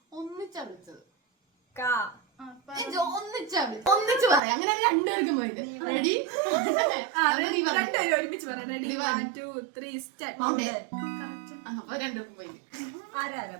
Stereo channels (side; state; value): left; drops out; at 4.4 s